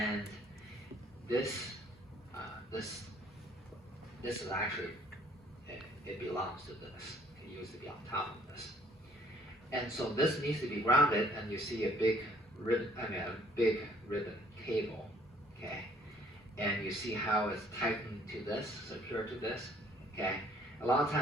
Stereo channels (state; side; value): normal; both; correlation 0.60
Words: this is actually, it belongs to this. It used to be on top of this. And so this needs to be grounded, and you see a big ribbon, cable, okay? And you see how it's tightened to this, secured to this, okay? A lot of